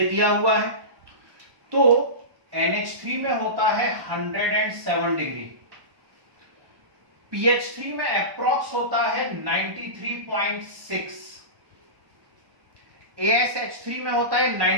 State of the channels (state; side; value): late; left; 1.2 ms